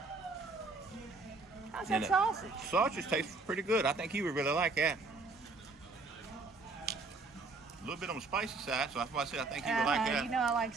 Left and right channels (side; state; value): left; quieter; 3.8 dB